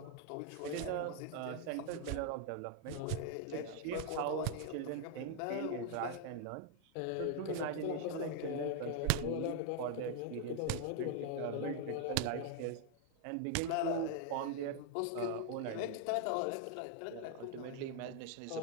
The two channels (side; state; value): both; different; correlation 0.00